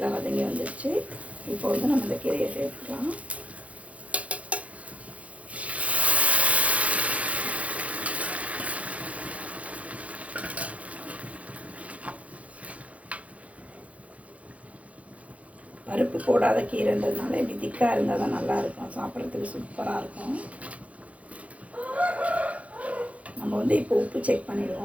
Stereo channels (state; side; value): late; left; 0.066 ms